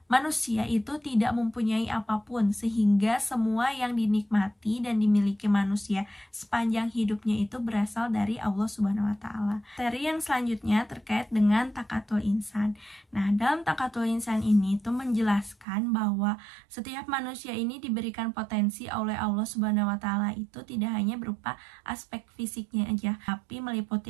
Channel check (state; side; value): drops out; left; at 15.7 s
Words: manusia itu tidak mempunyai apapun, sehingga semua yang dinikmati dan dimiliki manusia sepanjang hidupnya itu berasal dari Allah Subhanahu wa Ta'ala. Materi yang selanjutnya terkait dengan takatul insan. Nah, dalam takatul insan ini itu menjelaskan bahwa setiap manusia ini diberikan potensi oleh Allah Subhanahu wa Ta'ala itu tidak hanya berupa aspek fisiknya aja, tapi meliputi